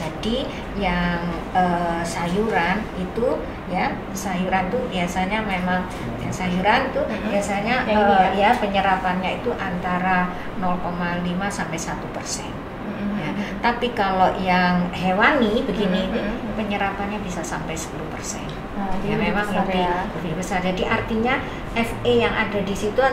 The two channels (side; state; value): both; identical; correlation 1.00